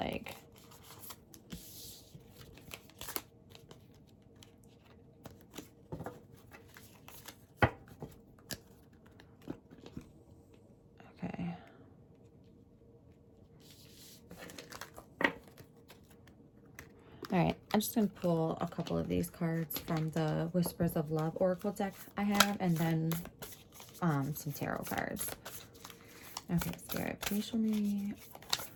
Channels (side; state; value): both; identical; correlation 1.00